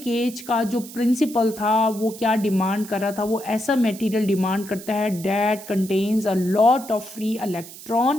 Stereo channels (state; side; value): noise; right; hiss, 15 dB below the sound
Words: का जो प्रिंसिपल था वो क्या डिमांड कर रहा था, वो ऐसा मटेरियल डिमांड करता है that contains a lot of free